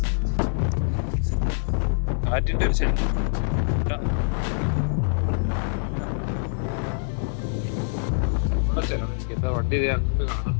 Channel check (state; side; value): silent; right; digital silence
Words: കാറ്റിന്റെ ഒരു ശരി ചിലവെനിക്ക് എന്താ വണ്ടി അങ്ങനെ കാണാം.